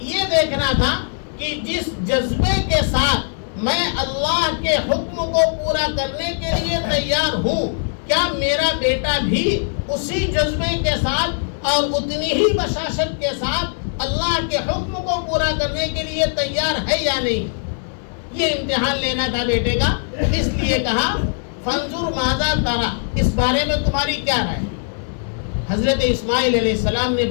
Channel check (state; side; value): silent; right; 66 dB below the other